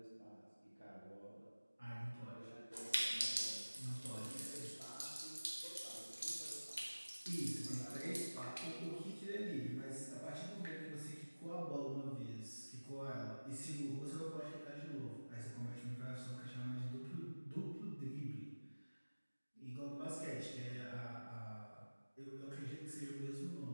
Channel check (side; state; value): both; inverted; correlation -1.00